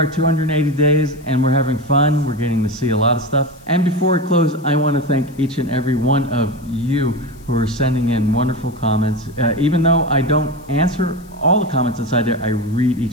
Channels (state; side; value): noise; left; hiss, 28 dB below the sound